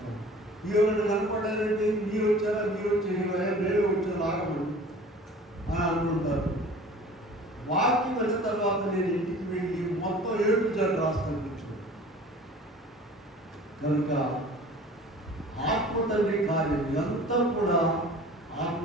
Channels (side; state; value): both; normal; correlation 0.44